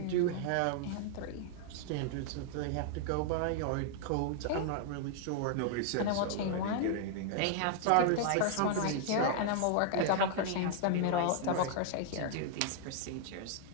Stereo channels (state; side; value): different; both; correlation -0.01